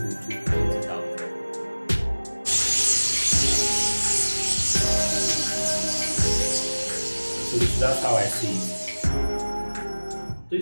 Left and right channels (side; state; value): both; inverted; correlation -1.00